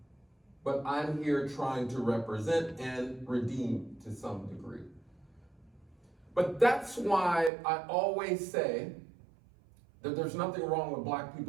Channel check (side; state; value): left; drops out; at 7.5 s